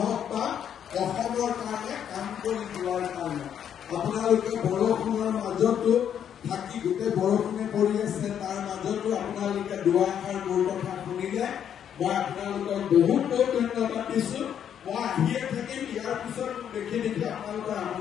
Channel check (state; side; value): quieter; right; 9.0 dB